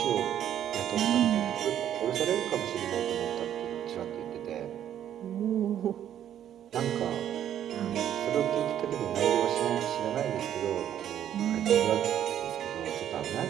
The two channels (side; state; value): left; quieter; 10.5 dB